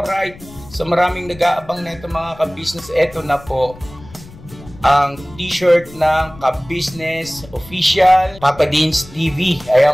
So maraming nag-aabang na ito mga ka-business. Ito na po ang t-shirt ng ka-business official Papa Dean's TV.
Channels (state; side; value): noise; left; rumble, 20 dB below the sound